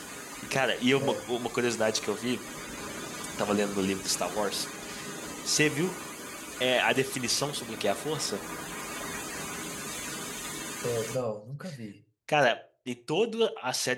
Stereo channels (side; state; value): both; identical; correlation 1.00